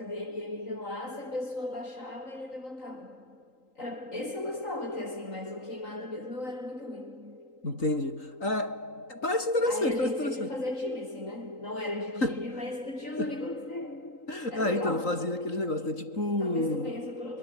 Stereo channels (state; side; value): late; right; 3.8 ms